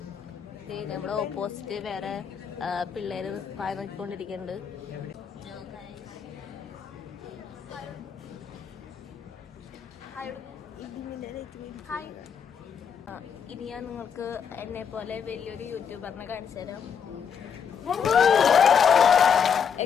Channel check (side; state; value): right; quieter; 7.3 dB